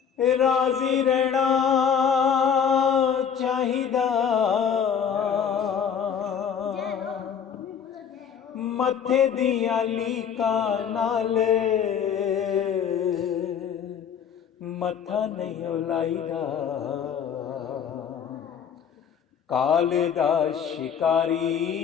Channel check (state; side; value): quieter; right; 7.6 dB